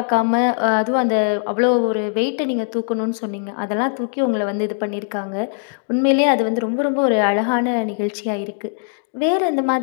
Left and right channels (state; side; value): silent; right; digital silence